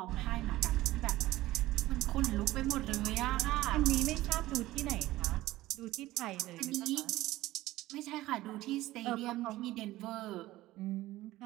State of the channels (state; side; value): quieter; left; 16.7 dB